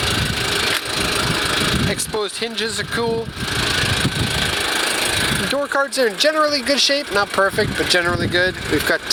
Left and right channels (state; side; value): identical; both; correlation 1.00